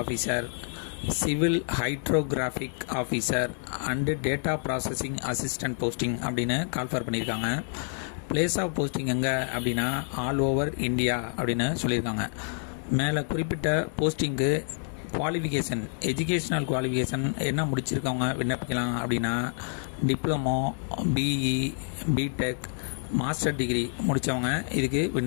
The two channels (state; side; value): silent; right; 56 dB below the other